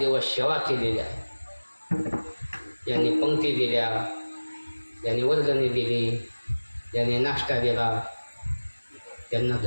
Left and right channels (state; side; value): inverted; both; correlation -1.00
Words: सेवा केलेल्या, ज्यांनी पंक्ती दिल्या, ज्यांनी वर्गणी दिली, ज्यांनी नाश्ता दिला, त्यांना